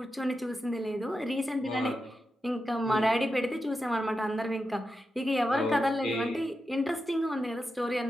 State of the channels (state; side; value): normal; both; correlation 0.89